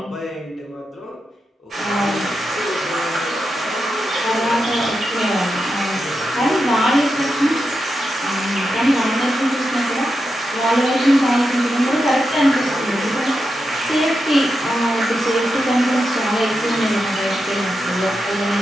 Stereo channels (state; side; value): normal; both; correlation 0.87